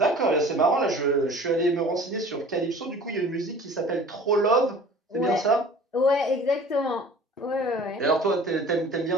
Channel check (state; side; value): normal; both; correlation 0.45